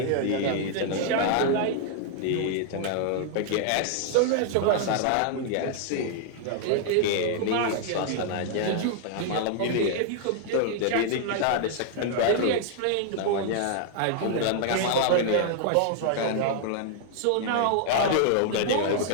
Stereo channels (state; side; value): different; both; correlation -0.01